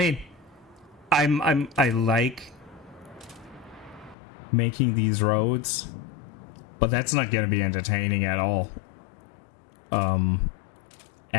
I like making these roads, but that's not gonna be entertaining at all.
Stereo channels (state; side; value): drops out; right; at 4.2 s